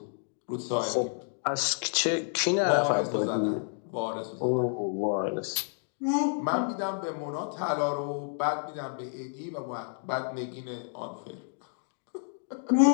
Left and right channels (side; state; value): right; silent; 56 dB below the other